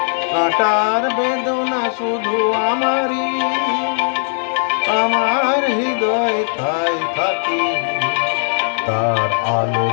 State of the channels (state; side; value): silent; right; digital silence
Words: কাঁটার বেদনা শুধু আমারই, আমার হৃদয় তাই থাকে, তার